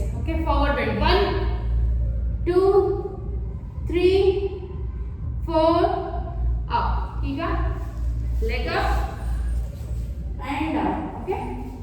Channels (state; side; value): identical; both; correlation 1.00